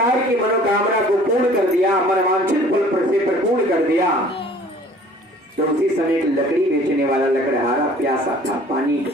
की मनोकामना को पूर्ण कर दिया, मनवांछित फल से परिपूर्ण कर दिया, तो उसी समय लकड़ी बेचने वाला लकड़हारा प्यासा था, पानी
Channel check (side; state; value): both; normal; correlation 0.51